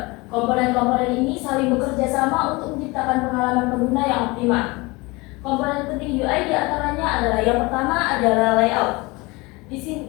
Komponen-komponen ini saling bekerja sama untuk menciptakan pengalaman pengguna yang optimal. Komponen penting UI diantaranya adalah yang pertama adalah layout. Di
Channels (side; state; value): right; quieter; 24.3 dB